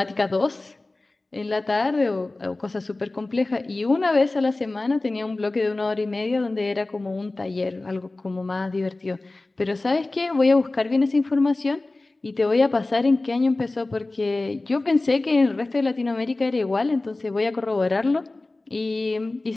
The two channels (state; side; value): quieter; right; 3.0 dB